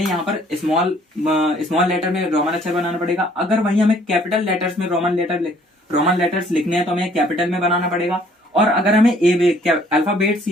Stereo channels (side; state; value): both; normal; correlation 0.60